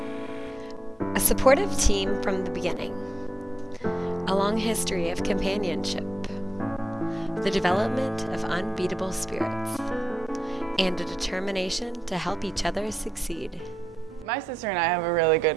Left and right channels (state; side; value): normal; both; correlation 0.87